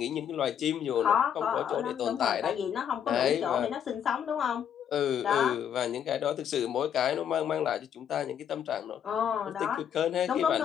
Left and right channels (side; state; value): right; quieter; 8.9 dB